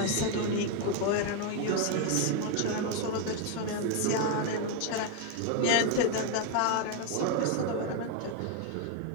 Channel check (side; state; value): both; different; correlation 0.01